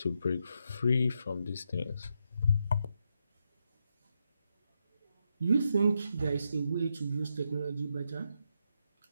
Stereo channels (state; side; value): inverted; both; correlation -0.82